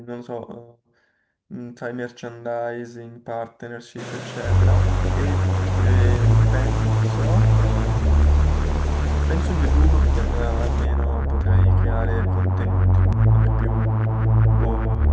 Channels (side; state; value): both; identical; correlation 1.00